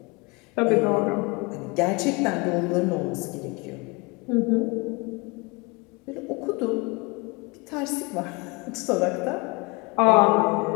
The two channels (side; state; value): right; quieter; 27.7 dB